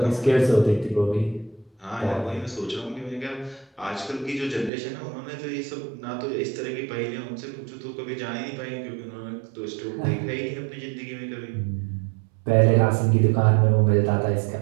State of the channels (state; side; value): drops out; left; at 4.7 s